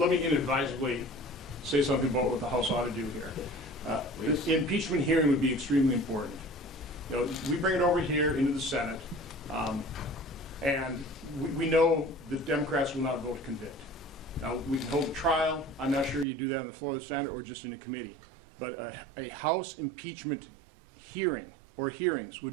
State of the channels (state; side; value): drops out; left; at 16.2 s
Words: me inadvisably say something about what the House ought to do here. The impeachment hearing would be extremely important. We bring it over here into the Senate, and we know the Democrats will not vote to convict. Now, we can hold a trial. I'm not sure you do that on the floor of the Senate or just in a committee. But a House impeachment hearing or hearings